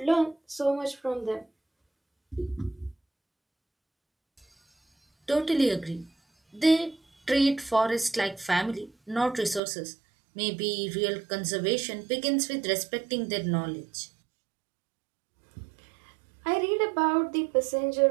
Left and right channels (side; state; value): left; drops out; at 9.6 s